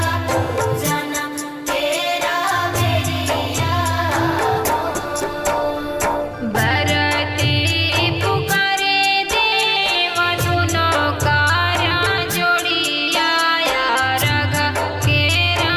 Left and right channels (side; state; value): both; identical; correlation 1.00